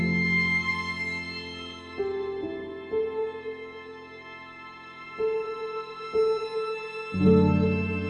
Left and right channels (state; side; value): identical; both; correlation 1.00